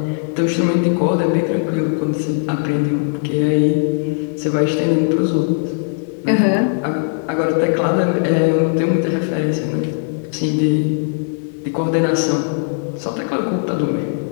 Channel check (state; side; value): silent; right; digital silence